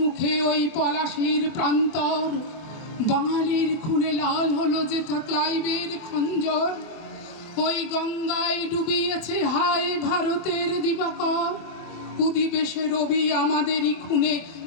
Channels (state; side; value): late; right; 24 ms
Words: ওই পলাশীর প্রান্তর। বাঙালির খুনে লাল হলো যেথা ক্লাইভের খঞ্জর। ওই গঙ্গায় ডুবিয়েছে হায় ভারতের দিবাকর। উদিবেশে রবি আমাদেরই খুনে